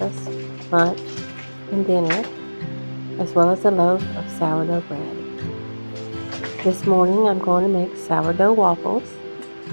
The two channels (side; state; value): both; inverted; correlation -1.00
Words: lunch, and dinner, as well as a loaf of sourdough bread. This morning I'm going to make sourdough waffles,